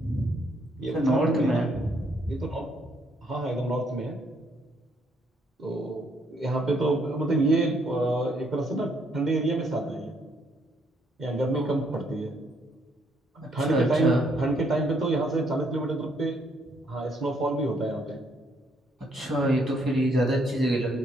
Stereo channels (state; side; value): normal; both; correlation 0.70